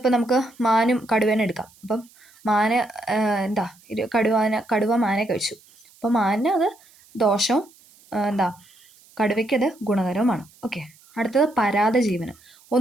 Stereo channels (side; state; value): right; noise; hiss, 28 dB below the sound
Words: നമുക്ക് മാനും കടുവേനെ എടുക്കാം. അപ്പം മാന് കടുവ മാനെ കഴിച്ചു. അപ്പോൾ മാനിന് അത് ദോഷവും കടുവയ്ക്കത് ഗുണകരവുമാണ്. ഓക്കെ, അടുത്തത് പരാദജീവനം.